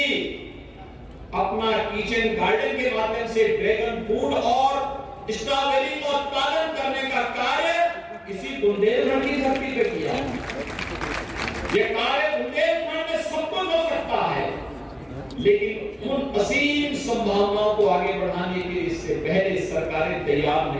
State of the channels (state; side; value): identical; both; correlation 1.00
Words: अपना किचन गार्डन के माध्यम से ड्रैगन फ्रूट और स्ट्रॉबेरी का उत्पादन करने का कार्य इसी बुंदेलखंड की धरती पे किया। यह कार्य बुंदेलखंड में सब कुछ हो सकता है, लेकिन उन असीम संभावनाओं को आगे बढ़ाने के लिए इससे पहले सरकारें तैयार